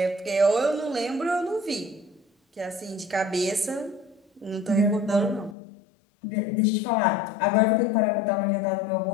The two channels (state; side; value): drops out; right; at 5.6 s